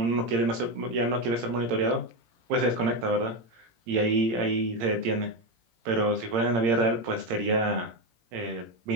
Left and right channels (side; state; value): left; late; 18 ms